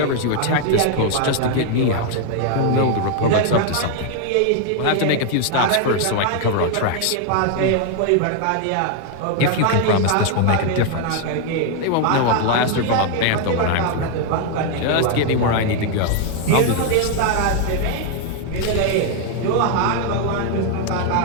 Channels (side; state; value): both; different; correlation 0.00